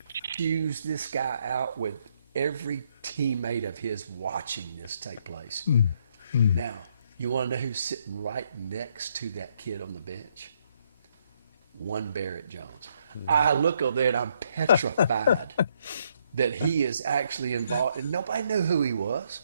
chews this guy out with every teammate of his watching this take place. Now, you want to know who's sitting right next to that kid on the bench? One Barrett Jones. I look over there and I'm petrified that he is actually involved. And nobody knew who he was.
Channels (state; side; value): inverted; both; correlation -0.72